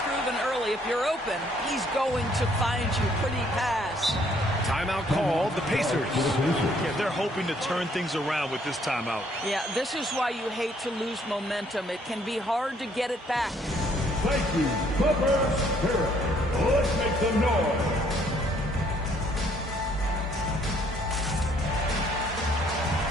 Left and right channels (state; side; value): normal; both; correlation 0.65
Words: proven early, if you're open, he's going to find you pretty pass. Timeout called, the Pacers. Yeah, they're hoping to turn things around with this timeout. Yeah, this is why you hate to lose momentum. It can be hard to get it back. Thank you, Clippers Spirit. Let's make some noise.